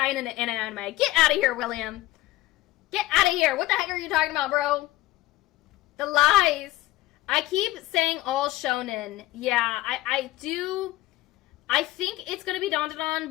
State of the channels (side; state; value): right; quieter; 17.3 dB